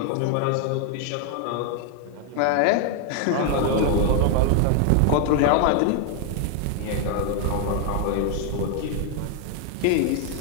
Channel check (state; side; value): different; both; correlation 0.00